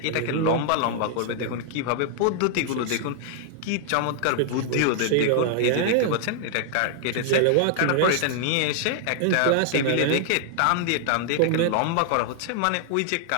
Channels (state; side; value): different; both; correlation 0.00